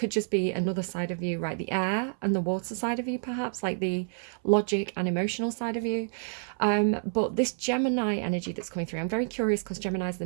just be another side of you, right? The air and the water side of you, perhaps, like the logic and emotional side of you. But this Gemini energy that's coming through, I'm very curious because Gemini is the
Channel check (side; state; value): left; silent; 59 dB below the other